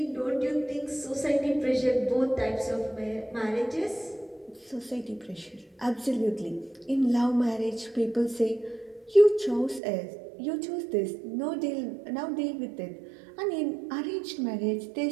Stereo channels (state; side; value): drops out; left; at 9.8 s